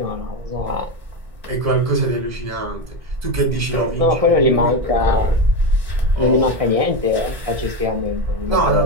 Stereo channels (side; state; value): left; late; 2.0 ms